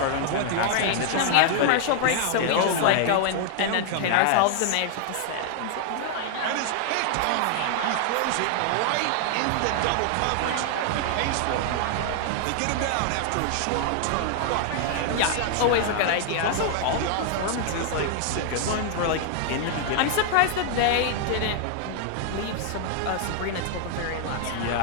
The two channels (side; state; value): both; different; correlation 0.00